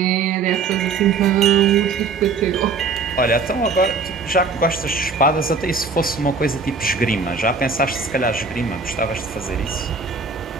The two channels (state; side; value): quieter; left; 4.6 dB